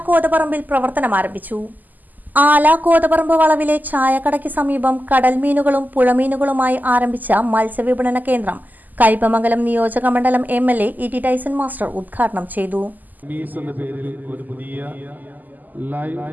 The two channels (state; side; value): late; left; 0.083 ms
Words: കോതപറമ്പിൽ പ്രവർത്തനം ആരംഭിച്ചു. ആല കോതപറമ്പ് വളവിലെ ചായക്കടയ്ക്ക് സമീപം കടൽമീനുകളും പുഴമീനുകളുമായി ആരംഭിച്ച മത്സ്യവിപണന കേന്ദ്രം കയ്പമംഗലം നിയോജക മണ്ഡലം MLA E.T. ടൈസൺ മാസ്റ്റർ ഉദ്ഘാടനം ചെയ്തു. ഒരു പുതിയ ലൈവ്